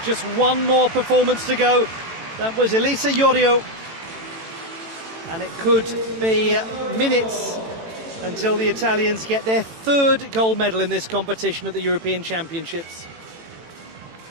Just one more performance to go. That was Elisa Iorio. And it could be minutes until the Italians get their third gold medal in this competition at the European Championships.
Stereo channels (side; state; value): left; late; 18 ms